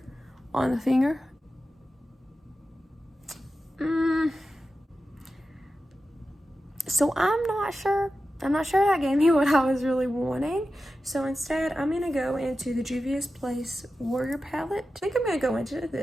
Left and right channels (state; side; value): normal; both; correlation 0.92